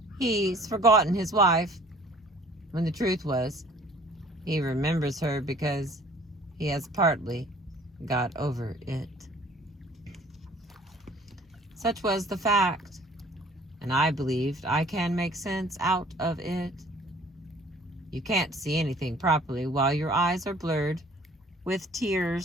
He's forgotten his wife. When the truth was, he remembers her because he has partly got over it. Such was the fact, and I believed I can make sense out of it. You can't see anything properly while your eyes are blurred with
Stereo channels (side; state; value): both; normal; correlation 0.53